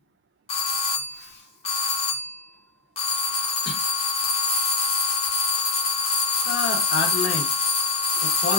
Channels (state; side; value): quieter; right; 3.8 dB